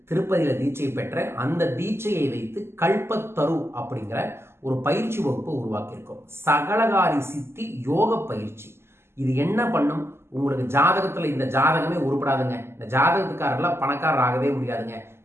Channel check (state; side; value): late; left; 0.12 ms